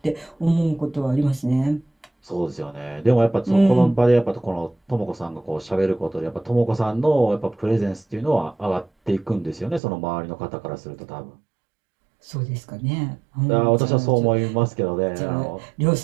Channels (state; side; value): drops out; left; at 9.8 s